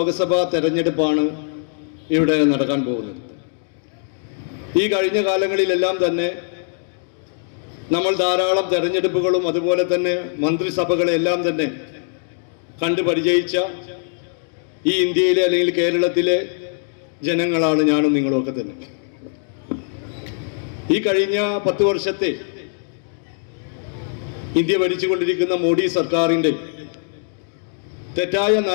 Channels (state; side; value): silent; right; 65 dB below the other